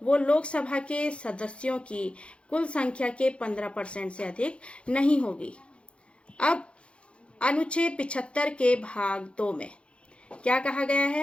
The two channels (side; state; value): right; late; 0.059 ms